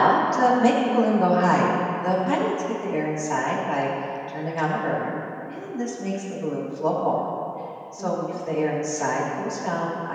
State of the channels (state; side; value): identical; both; correlation 1.00